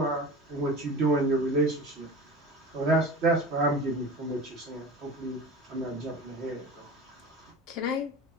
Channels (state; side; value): normal; both; correlation 0.34